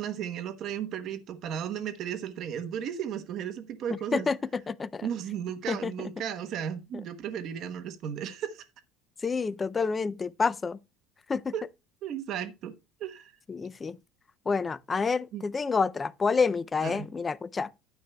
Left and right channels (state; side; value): normal; both; correlation 0.76